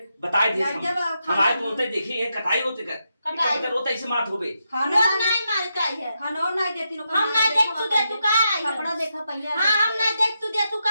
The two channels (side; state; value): both; inverted; correlation -0.84